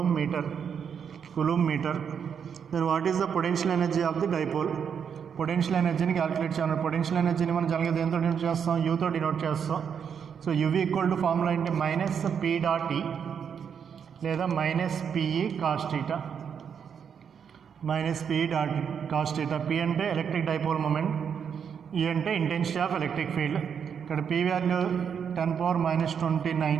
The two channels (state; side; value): quieter; left; 7.4 dB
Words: metre. Then what is the potential energy of the dipole? Potential ఎనర్జీని calculate చేయాలి. Potential ఎనర్జీని మనం జనరల్గా దేంతో denote చేస్తాం? యూతో డినోట్ చేస్తాం. So UV equal to formula ఏంటి? -P.E లేదా -PE cos θ. -PE cos θ. P అంటే ఎలక్ట్రిక్ డైపోల్ మూమెంట్, E అంటే ఇంటెన్సిటీ ఆఫ్ ఎలక్ట్రిక్ ఫీల్డ్. ఇక్కడ P value 10⁻⁻29,